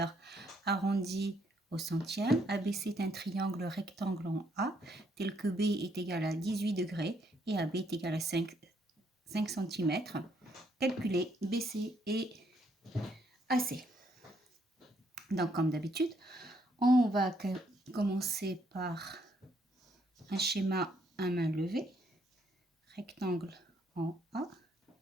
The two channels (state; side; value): normal; both; correlation 0.71